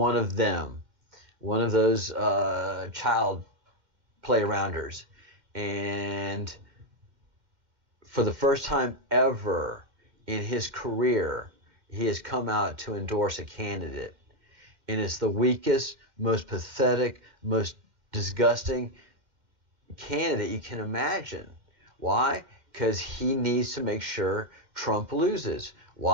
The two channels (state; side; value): late; left; 2.1 ms